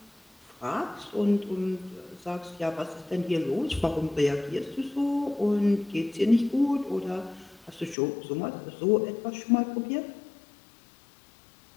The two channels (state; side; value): drops out; right; at 8.0 s